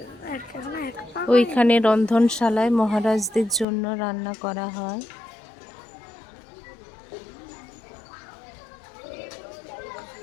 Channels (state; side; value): drops out; right; at 3.7 s